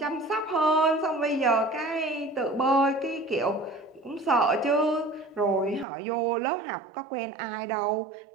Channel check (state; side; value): drops out; left; at 5.9 s